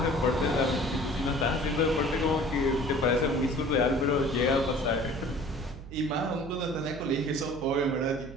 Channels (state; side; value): noise; right; hum, 14 dB below the sound